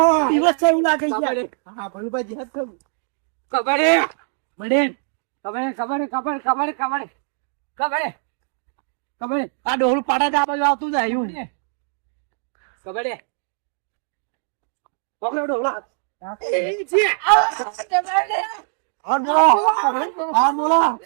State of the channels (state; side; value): silent; left; digital silence